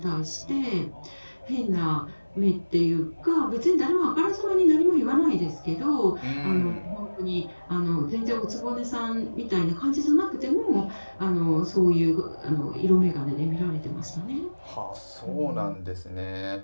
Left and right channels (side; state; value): both; inverted; correlation -1.00